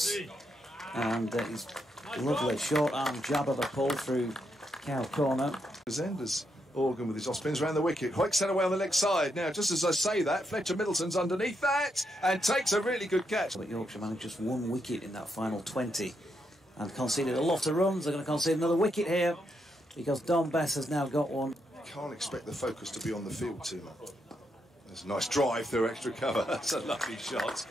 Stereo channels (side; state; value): both; normal; correlation 0.80